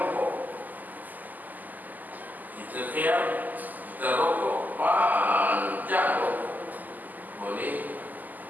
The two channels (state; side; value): late; left; 0.083 ms